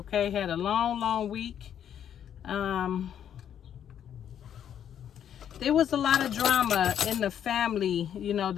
had a long week. There was a lot of drama in the family, you know,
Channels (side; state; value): right; quieter; 9.4 dB